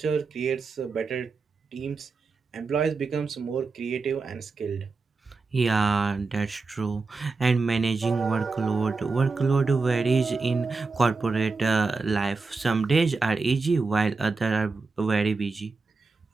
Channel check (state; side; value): quieter; left; 4.1 dB